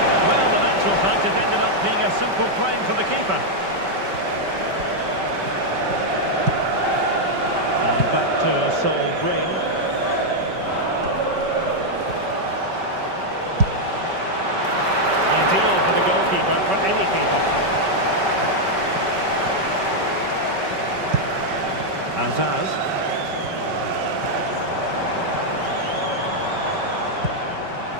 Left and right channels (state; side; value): late; left; 5.2 ms